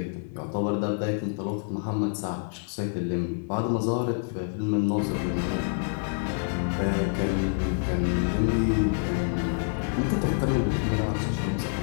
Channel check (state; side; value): silent; right; 60 dB below the other